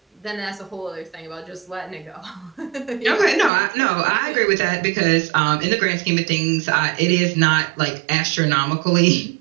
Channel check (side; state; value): left; drops out; at 3.5 s